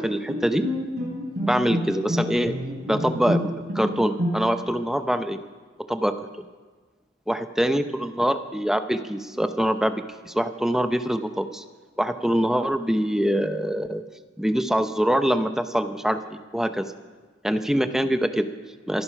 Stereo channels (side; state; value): both; normal; correlation 0.92